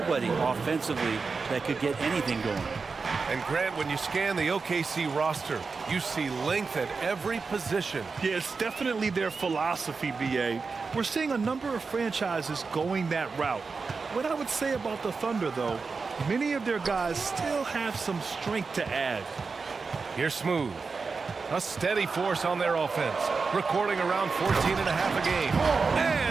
offensively that could get anything going. And Grant, when you scan the OKC roster, you see length at every position. Yeah, it's definitely their philosophy, BA. We're seeing a number of franchises going that route. What I would say about the Thunder, though, many of their guys still have some strength to add. Here's Smooth. A steady force on their offense, recording around 14.5 a game.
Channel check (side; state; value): left; quieter; 4.6 dB